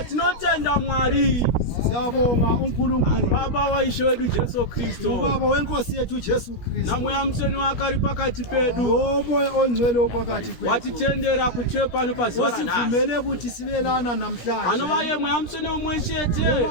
Tinotenda Mwari. Siyabonga uNkulunkulu Baba wa Ishe wedu Jesu Kristo. Ubaba wenkosi yethu Jesu Kristo. Na muyamseni wakari pakati pedu. Umoya ongcwele opakati kwethu. Watitendera kuthepa no paziwa nasi. Osivumele ukuthi sibelana namhlanje. Anobaye muyamseni umweshete.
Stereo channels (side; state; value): right; late; 17 ms